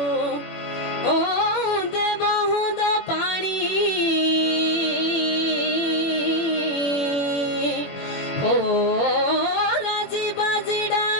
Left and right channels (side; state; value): right; late; 21 ms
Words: हो राजी बाजी